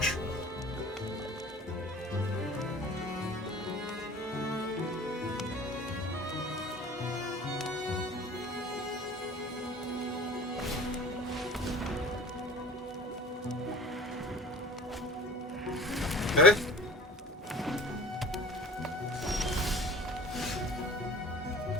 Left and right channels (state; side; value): normal; both; correlation 0.43